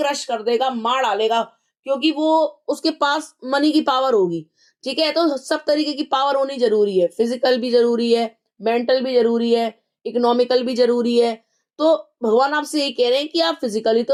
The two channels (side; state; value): both; identical; correlation 1.00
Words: कर देगा, मार डालेगा, क्योंकि वो उसके पास मनी की पावर होगी, ठीक है? तो सब तरीके की पावर होनी जरूरी है, फिजिकल भी जरूरी है, मेंटल भी जरूरी है, इकोनॉमिकल भी जरूरी है। तो भगवान आपसे ये कह रहे हैं कि आप फिजिकली